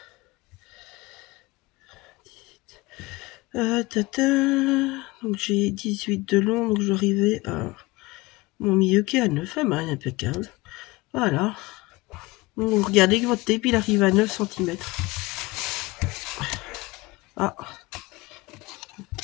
Donc j'ai 18 de long, donc je vais arriver à mon milieu qui est à 9, impeccable. Voilà. Donc, vous regardez que votre tape il arrive à 9 cm. Ah,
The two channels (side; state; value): right; quieter; 21.8 dB